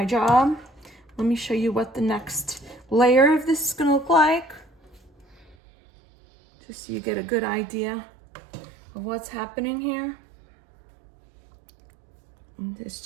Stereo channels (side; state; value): left; drops out; at 5.6 s